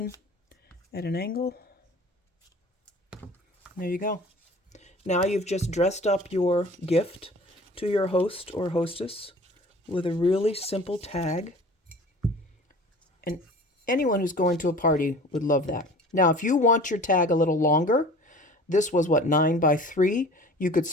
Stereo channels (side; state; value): both; normal; correlation 0.43